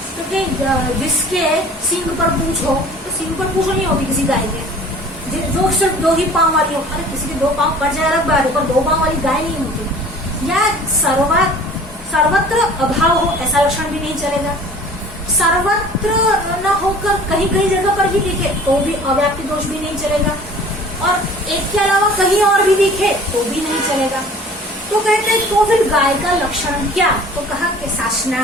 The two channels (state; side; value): normal; both; correlation 0.47